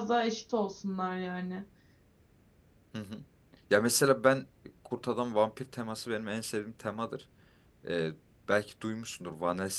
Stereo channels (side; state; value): both; identical; correlation 1.00